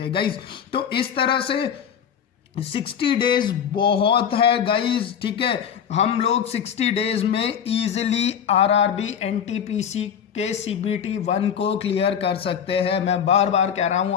हैं गाइज। तो इस तरह से 60 डेज बहुत है गाइज, ठीक है। हम लोग 60 डेज में इजीली RRB NTPC के CBT 1 को क्लियर कर सकते हैं। मैं बार बार कह रहा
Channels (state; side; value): quieter; right; 8.1 dB